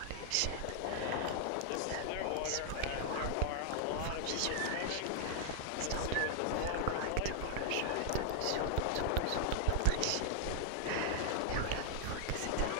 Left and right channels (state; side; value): different; both; correlation 0.00